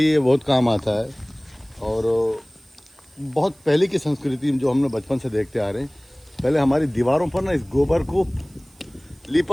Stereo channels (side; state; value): right; noise; hiss, 30 dB below the sound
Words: बहुत काम आता है। और बहुत पहले की संस्कृति जो हम लोग बचपन से देखते आ रहे हैं, पहले हमारी दीवारों पर ना इस गोबर को